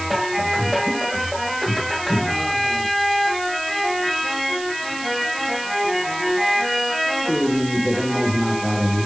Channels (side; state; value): right; noise; hiss, 12 dB below the sound